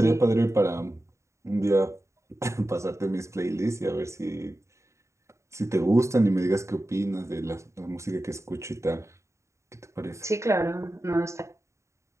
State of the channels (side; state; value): left; late; 0.14 ms